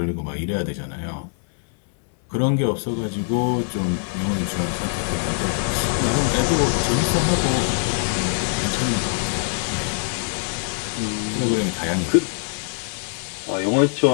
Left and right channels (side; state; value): right; silent; 63 dB below the other